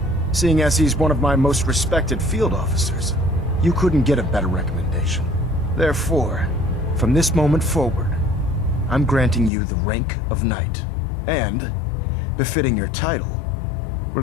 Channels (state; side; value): drops out; right; at 9.5 s